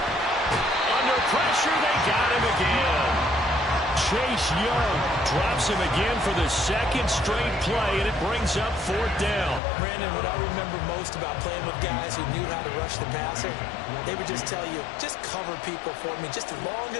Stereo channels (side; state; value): right; drops out; at 9.6 s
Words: Under pressure, they got him again. Chase Young drops him again for the 2nd straight play, and it brings up 4th down. Brandon, what I remember most about playing with guys who knew how to rush the passer, they would just tell you, just cover people for me, just long